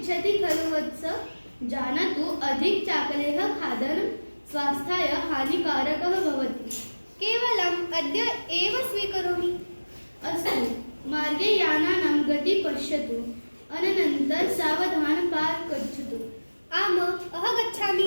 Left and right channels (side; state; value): both; inverted; correlation -1.00